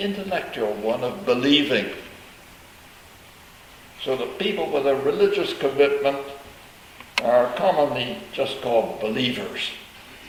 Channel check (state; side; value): identical; both; correlation 1.00